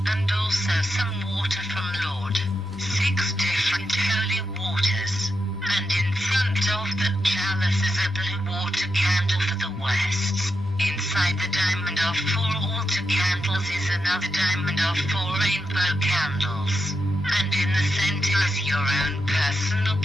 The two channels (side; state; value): both; normal; correlation 0.86